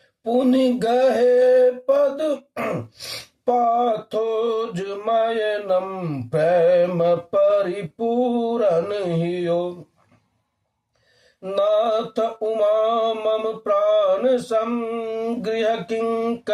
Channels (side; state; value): both; identical; correlation 1.00